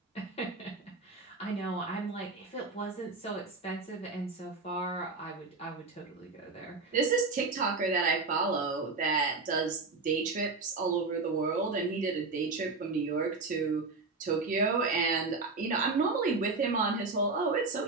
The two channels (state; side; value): quieter; left; 3.9 dB